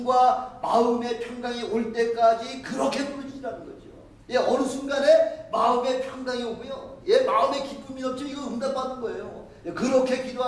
마음의 평강이 올 때까지 그렇게 부르짖으라는 거죠. 예, 어느 순간에 마음의 평강이 오고요. 예, 마음의 기쁨이 넘치면 이거 응답받는 거예요. 예, 그렇게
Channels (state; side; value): identical; both; correlation 1.00